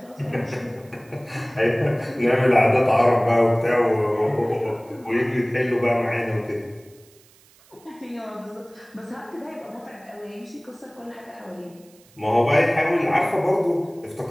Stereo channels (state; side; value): noise; right; hiss, 28 dB below the sound